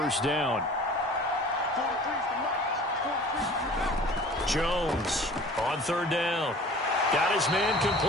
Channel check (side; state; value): both; normal; correlation 0.45